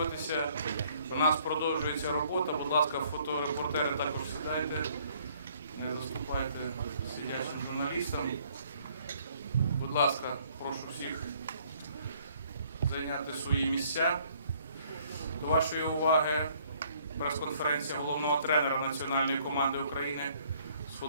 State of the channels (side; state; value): both; inverted; correlation -0.62